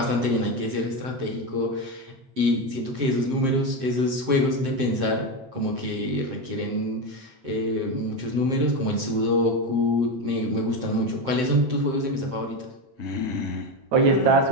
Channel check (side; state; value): left; late; 7.6 ms